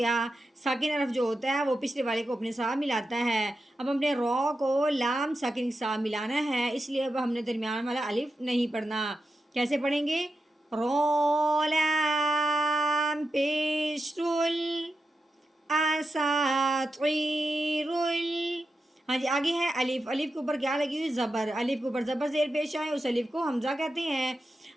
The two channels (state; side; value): normal; both; correlation 0.89